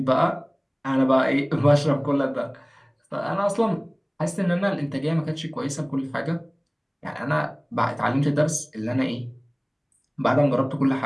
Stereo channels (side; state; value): both; identical; correlation 1.00